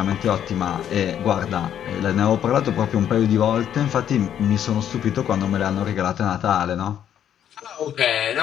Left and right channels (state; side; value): quieter; right; 9.9 dB